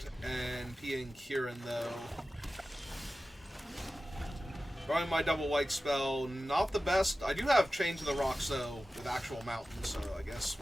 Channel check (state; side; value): normal; both; correlation 0.95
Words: and Pia and Kieran, though. Drawing my double white spell, not the best. I do have Chain to the Rocks, though, with actual mountains, so I guess